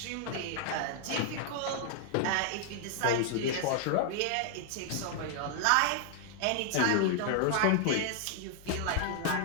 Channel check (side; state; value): both; different; correlation 0.00